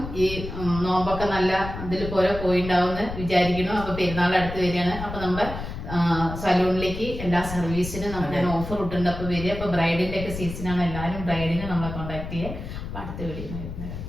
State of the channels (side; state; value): left; noise; rumble, 8 dB below the sound